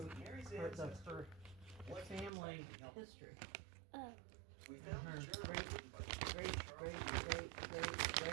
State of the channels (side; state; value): left; drops out; at 2.3 s